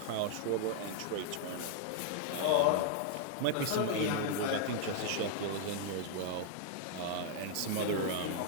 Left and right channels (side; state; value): both; different; correlation -0.01